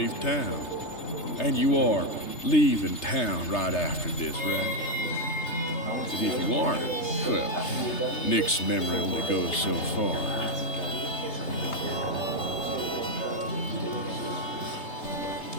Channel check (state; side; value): late; right; 3.3 ms